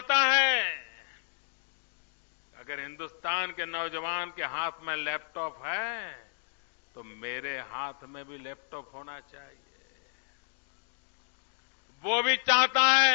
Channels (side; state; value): right; silent; digital silence